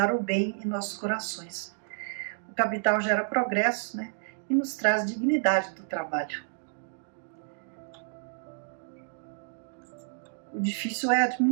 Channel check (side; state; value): left; silent; digital silence